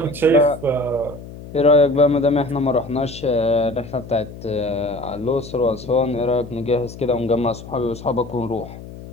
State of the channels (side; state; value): left; noise; hum, 14 dB below the sound